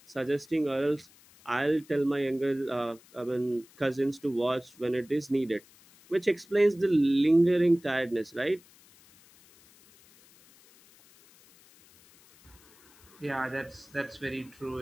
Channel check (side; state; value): left; noise; hiss, 27 dB below the sound